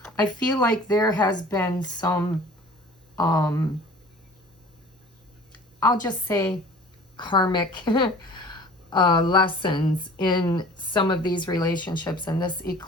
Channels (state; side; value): normal; both; correlation 0.46